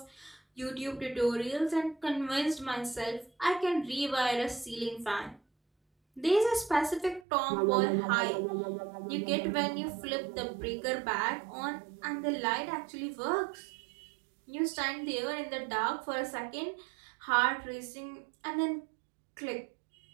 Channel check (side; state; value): left; drops out; at 7.2 s